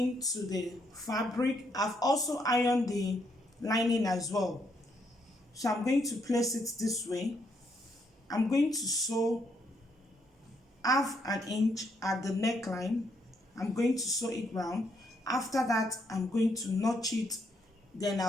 to the fabric. I've also ironed the lining as well. So I'm going to place it this way. I'm going to sew half an inch at the neckline. I'm going to sew it round. After that, I'm going to notch it, then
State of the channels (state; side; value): normal; both; correlation 0.75